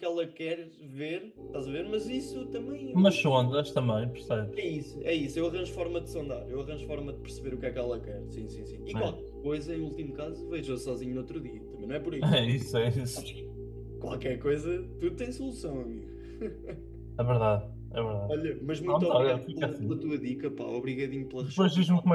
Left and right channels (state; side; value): identical; both; correlation 1.00